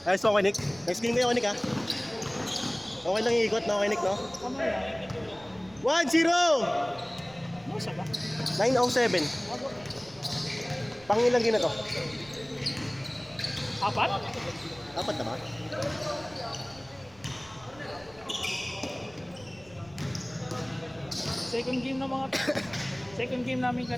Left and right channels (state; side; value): noise; right; rumble, 24 dB below the sound